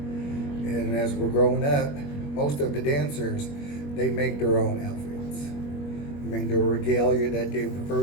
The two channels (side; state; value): right; late; 21 ms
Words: as we're growing up, most of the dancers, they make their own outfits. I mean, their regalia that they